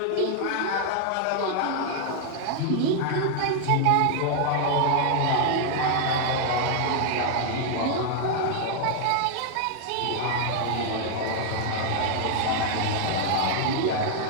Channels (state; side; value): different; both; correlation 0.00